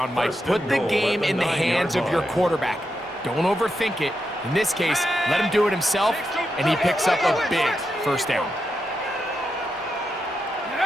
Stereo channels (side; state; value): both; normal; correlation 0.86